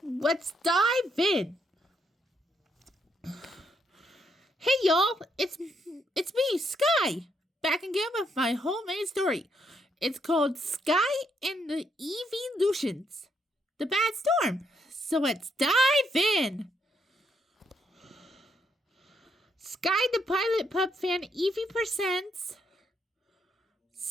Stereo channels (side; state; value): both; normal; correlation 0.75